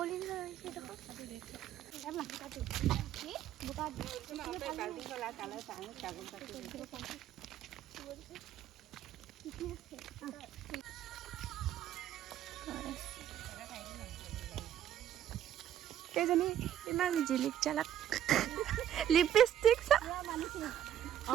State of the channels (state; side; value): quieter; left; 10.8 dB